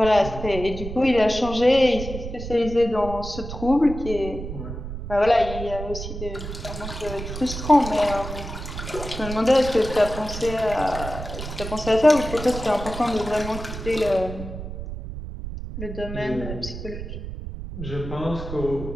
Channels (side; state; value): right; noise; rumble, 8 dB below the sound